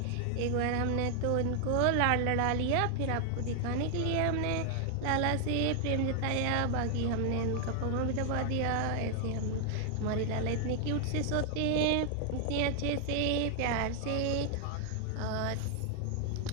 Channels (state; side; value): different; both; correlation 0.00